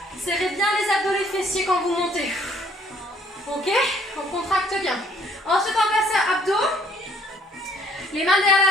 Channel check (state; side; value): normal; both; correlation 0.62